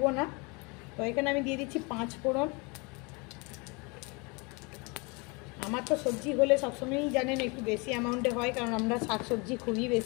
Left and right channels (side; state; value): right; quieter; 29.5 dB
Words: না। তো এখানে আমি দিয়ে দিচ্ছি 5 ফোড়ন। আমার তো সবজি হলে সবসময়ই জানেন একটু বেশি অ্যামাউন্টে হয়, কারণ আমরা শাকসবজি খুবই